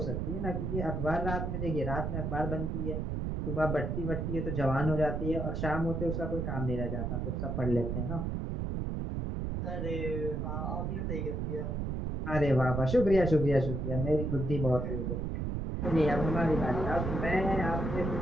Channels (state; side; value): noise; right; rumble, 2 dB below the sound